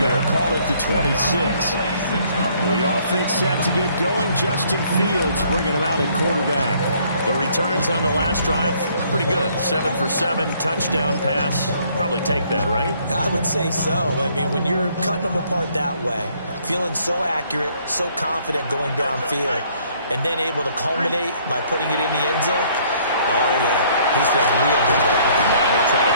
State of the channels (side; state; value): both; inverted; correlation -0.63